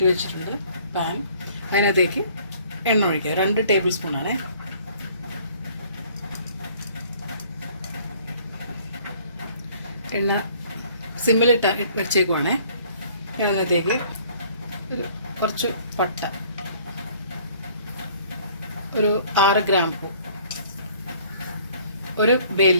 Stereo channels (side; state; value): both; inverted; correlation -0.56